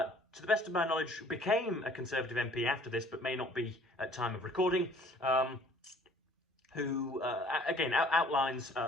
the best of my knowledge, became a Conservative MP after this, but may not be at time of recording. who again outlines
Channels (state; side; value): normal; both; correlation 0.55